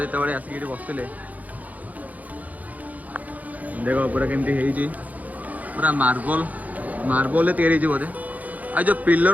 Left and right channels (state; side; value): late; left; 0.077 ms